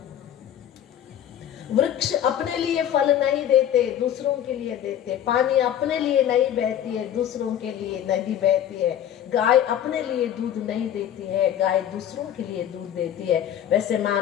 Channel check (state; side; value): quieter; right; 10.5 dB